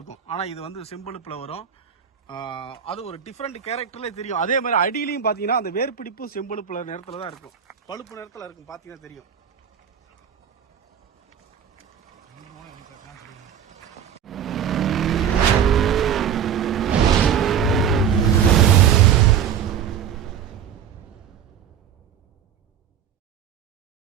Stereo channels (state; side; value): quieter; left; 8.4 dB